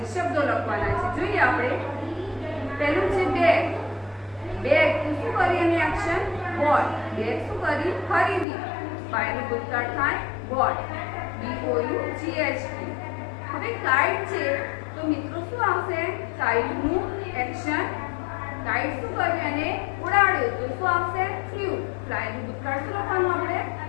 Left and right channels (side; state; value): right; drops out; at 8.5 s